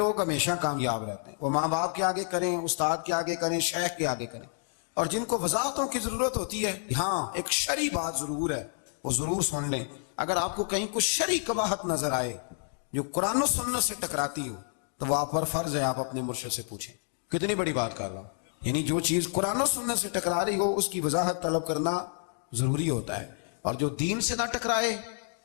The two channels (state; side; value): silent; right; 58 dB below the other